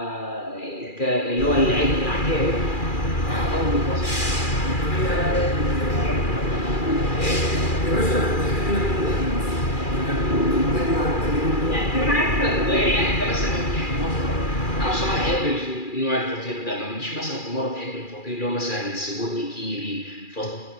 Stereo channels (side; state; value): right; late; 2.4 ms